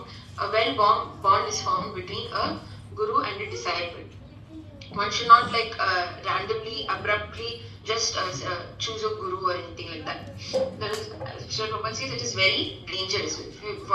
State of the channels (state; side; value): identical; both; correlation 1.00